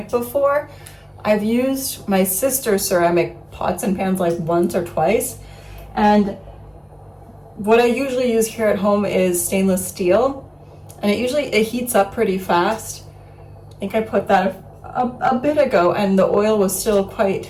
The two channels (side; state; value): both; identical; correlation 1.00